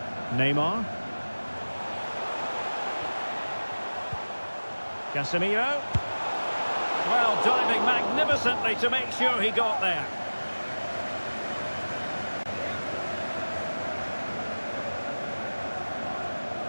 Neymar. Casemiro. Well, diving magnificently to make sure he got there.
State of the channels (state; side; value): inverted; both; correlation -1.00